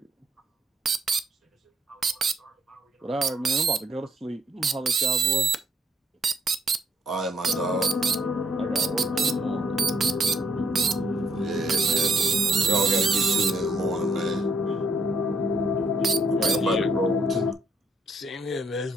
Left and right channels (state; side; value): normal; both; correlation 0.71